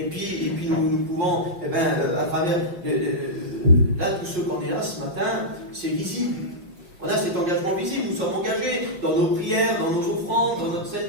puis nous pouvons, à travers, là, tous ceux qu'on est là ce matin, c'est visible. On a cet engagement visible, nous sommes engagés dans nos prières, dans nos offrandes, dans notre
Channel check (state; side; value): late; left; 5.4 ms